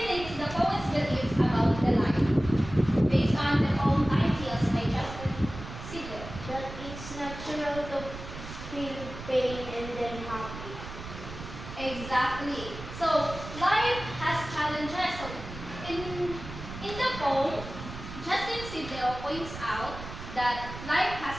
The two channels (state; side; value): noise; right; rumble, 11 dB below the sound